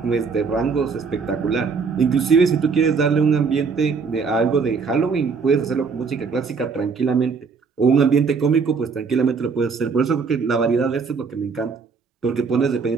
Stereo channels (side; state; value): left; quieter; 5.2 dB